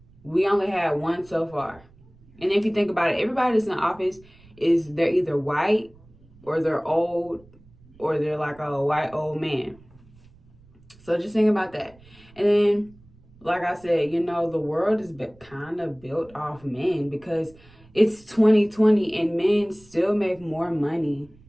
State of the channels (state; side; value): noise; right; rumble, 26 dB below the sound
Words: we only had one so far. And if you think about it, everybody that's in office they're either white or they're old or they're like a white old man. So just think about that. And then, like I said, you know, the world is kind of built off men because it's 2020 and men still make more money